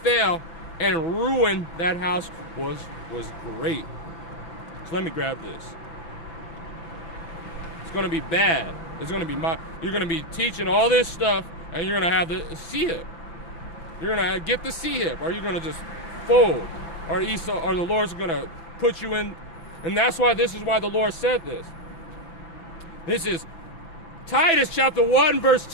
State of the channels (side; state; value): right; late; 6.0 ms